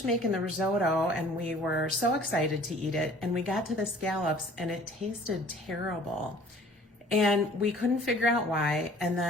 making the risotto and we were so excited to eat it. And we got to the scallops and it tasted terrible. And we couldn't figure out why. And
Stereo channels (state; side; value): normal; both; correlation 0.51